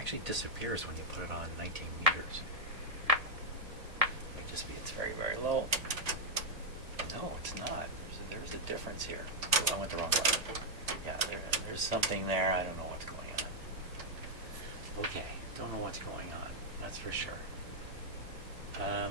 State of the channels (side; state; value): left; late; 1.7 ms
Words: disappears when you put it on 19 meters. Might just be it's very, very low. No, it's not. There's a difference here. Oh, I went the wrong way. Yeah, there's something there. I don't know what's going on. Okay, don't know what's going on. That's for sure.